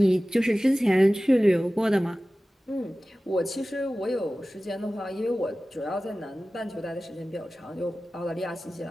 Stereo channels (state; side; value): normal; both; correlation 0.96